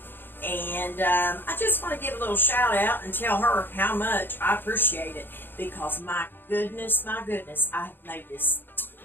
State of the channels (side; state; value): right; late; 0.098 ms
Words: and I just want to give a little shout out and tell her how much I appreciate it, because my goodness, I have made this,